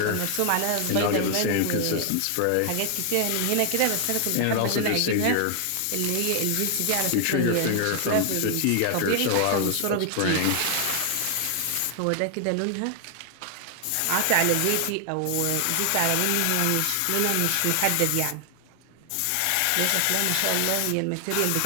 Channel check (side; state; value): both; different; correlation 0.00